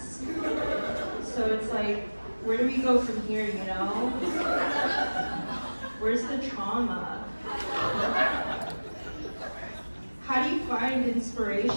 So it's like, where do we go from here, you know? Where's the trauma? How do you find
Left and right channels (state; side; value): inverted; both; correlation -1.00